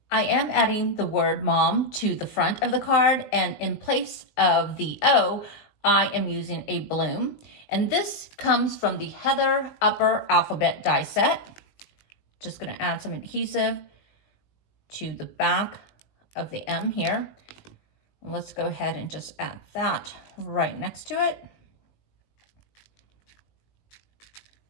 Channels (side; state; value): right; late; 20 ms